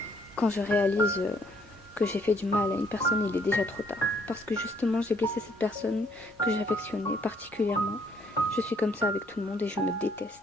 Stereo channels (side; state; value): both; normal; correlation 0.67